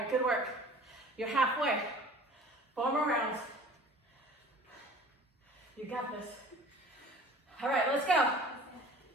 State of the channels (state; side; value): normal; both; correlation 0.46